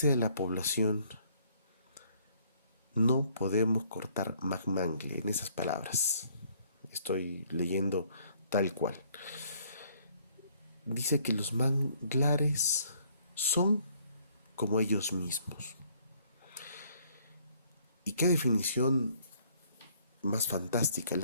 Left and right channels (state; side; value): inverted; both; correlation -0.63